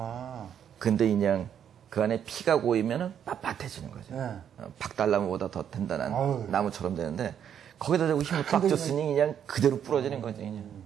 근데 그냥 그 안에 피가 고이면은 빳빳해지는 거죠. 네. 박달나무보다 더 단단한 아유. 나무처럼 되는데 거기다 대고 힘을 빡 근데 줬으니 그냥 그대로 부러지는 거지 그냥.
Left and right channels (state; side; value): quieter; left; 8.9 dB